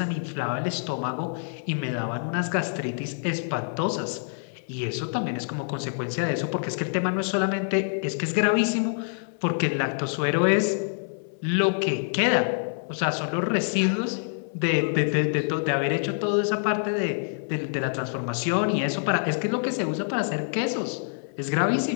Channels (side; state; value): right; silent; 61 dB below the other